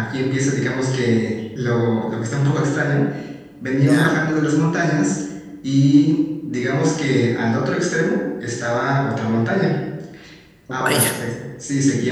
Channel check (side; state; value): both; identical; correlation 1.00